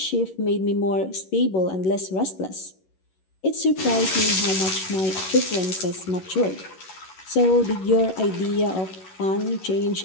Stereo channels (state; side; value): late; right; 11 ms